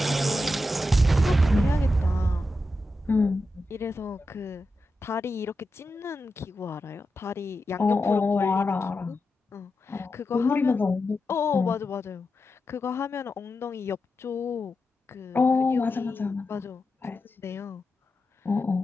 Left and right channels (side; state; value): both; normal; correlation 0.89